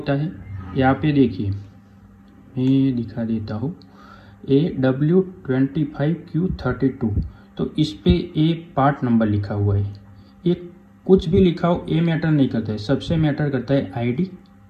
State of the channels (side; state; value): both; identical; correlation 1.00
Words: है, यहाँ पे देखिए, मैं दिखा देता हूँ। AW25Q32। तो इस पे ए पार्ट नंबर लिखा हुआ है। ये कुछ भी लिखा हो ये मैटर नहीं करता है, सबसे मैटर करता है आईडी,